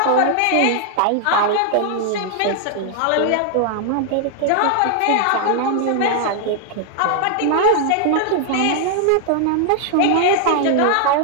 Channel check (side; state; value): both; different; correlation 0.00